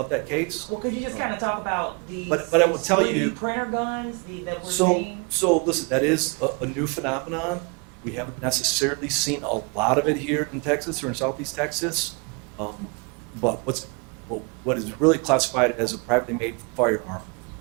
that case. Well, could you just kind of talk about the? But I will tell you. 3D printer guns that we're So, seeing? so listen, that is a new phenomenon. We haven't necessarily seen a lot of it here in Texas or in Southeast Texas. But what is really classified as a privately made firearm,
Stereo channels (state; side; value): quieter; left; 32.7 dB